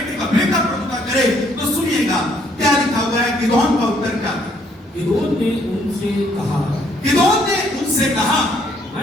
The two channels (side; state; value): both; normal; correlation 0.67